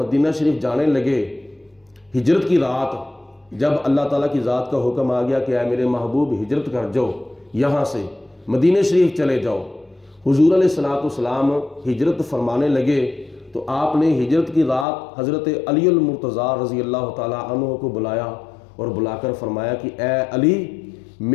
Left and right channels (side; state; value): right; drops out; at 14.9 s